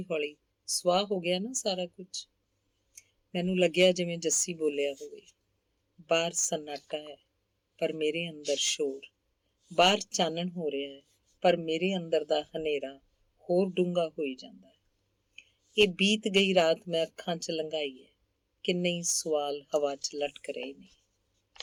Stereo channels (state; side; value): identical; both; correlation 1.00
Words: ਹੌਲੀ ਸੁਆਹ ਹੋ ਗਿਆ ਨਾ ਸਾਰਾ ਕੁਝ। ਮੈਨੂੰ ਲੱਗਿਆ ਜਿਵੇਂ ਜੱਸੀ ਬੋਲਿਆ ਹੋਵੇ। ਬਾਹਰ ਸન્ਨਾਟਾ ਹੈ ਪਰ ਮੇਰੇ ਅੰਦਰ ਸ਼ੋਰ। ਬਾਹਰ ਚਾਨਣ ਹੋ ਰਿਹਾ ਹੈ ਪਰ ਮੇਰੇ ਅੰਦਰ ਦਾ ਹਨੇਰਾ ਹੋਰ ਡੂੰਘਾ ਹੋਈ ਜਾਂਦਾ ਹੈ। ਇਹ ਬੀਤ ਗਈ ਰਾਤ ਮੈਂ ਅੱਖਾਂ 'ਚ ਲੰਘਾਈ ਹੈ। ਕਿੰਨੇ ਹੀ ਸਵਾਲ ਹਵਾ 'ਚ ਲਟਕ ਰਹੇ ਨੇ।